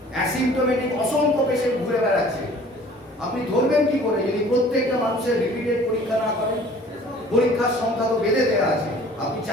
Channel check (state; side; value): normal; both; correlation 0.50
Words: অ্যাসিম্পটোমেটিক অসংখ্য পেশেন্ট ঘুরে বেড়াচ্ছে। আপনি ধরবেন কি করে যদি প্রত্যেকটা মানুষের রিপিটেড পরীক্ষা না করেন? পরীক্ষার সংখ্যা তো বেঁধে দেওয়া আছে, আপনি